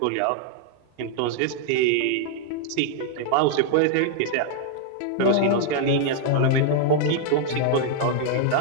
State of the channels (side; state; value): both; different; correlation -0.01